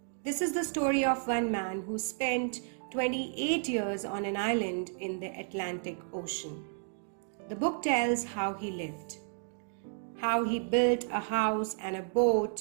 This is the story of one man who spent 28 years on an island in the Atlantic Ocean. The book tells how he lived, how he built a house and a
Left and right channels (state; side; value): silent; left; 56 dB below the other